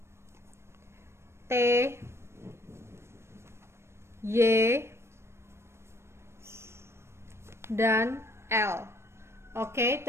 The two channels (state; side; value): late; left; 0.13 ms